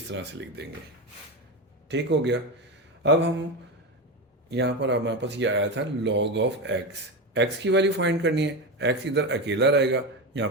तरह से लिख देंगे। ठीक हो गया। अब हम यहाँ पर हमारे पास ये आया था log ऑफ x की वैल्यू फाइंड करनी है। x इधर अकेला रहेगा, यहाँ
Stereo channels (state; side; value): normal; both; correlation 0.18